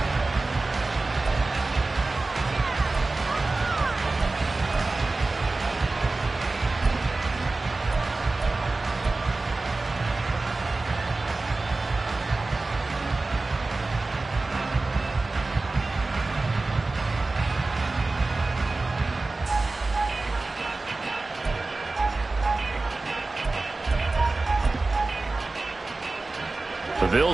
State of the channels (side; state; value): left; quieter; 3.4 dB